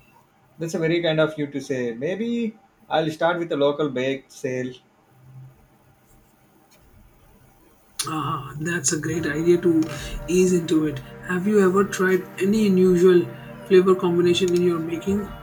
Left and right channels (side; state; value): both; identical; correlation 1.00